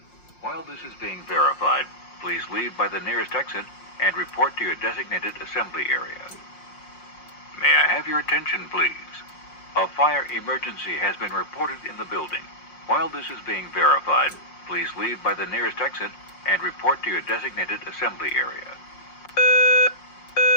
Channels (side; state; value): right; late; 5.6 ms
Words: While this is being verified, please leave by the nearest exit and report to your designated assembly area. May I have your attention, please? A fire emergency has been reported in the building. While this is being verified, please leave by the nearest exit and report to your designated assembly area.